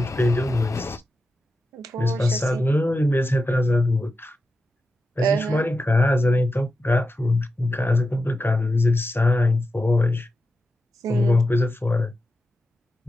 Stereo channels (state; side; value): normal; both; correlation 0.90